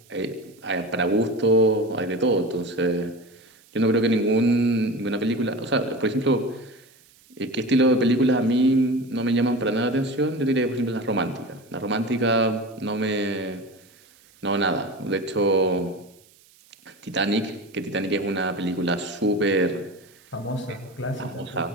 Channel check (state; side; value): noise; right; hiss, 29 dB below the sound